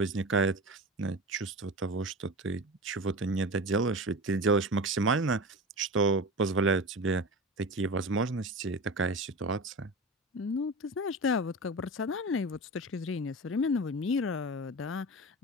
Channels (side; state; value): both; normal; correlation 0.29